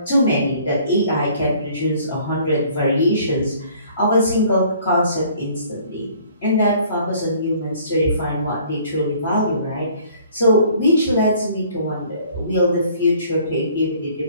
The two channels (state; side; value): inverted; both; correlation -0.56